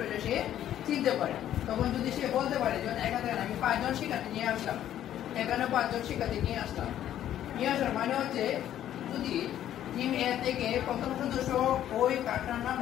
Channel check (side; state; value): right; quieter; 11.5 dB